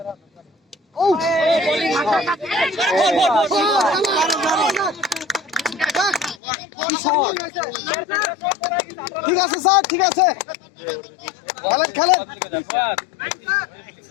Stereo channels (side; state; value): right; drops out; at 6.4 s